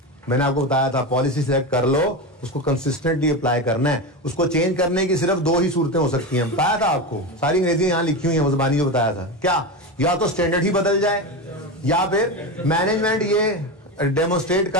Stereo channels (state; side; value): normal; both; correlation 0.19